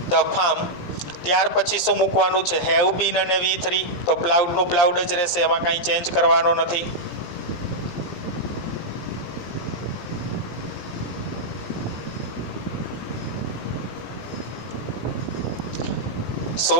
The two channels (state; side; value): late; right; 17 ms